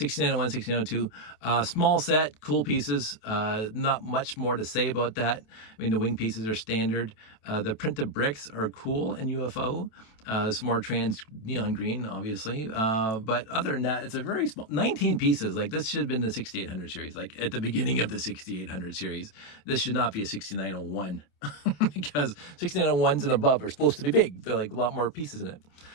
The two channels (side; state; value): right; late; 27 ms